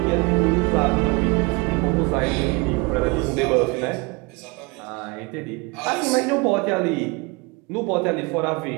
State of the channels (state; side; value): quieter; left; 27.1 dB